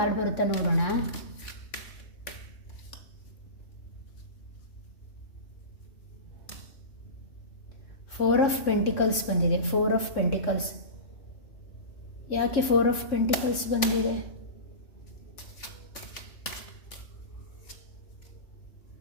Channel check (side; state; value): right; late; 3.6 ms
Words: ಬರುತ್ತಾ ನೋಡೋಣ. ಫೋರ್ ಆಫ್ ಪೆಂಟಿಕಲ್ಸ್ ಬಂದಿದೆ. 4 ಆಫ್ ಪೆಂಟಿಕಲ್ಸ್. ಯಾಕೆ 4 ಆಫ್ ಪೆಂಟಿಕಲ್ಸ್ ಬಂದಿದೆ?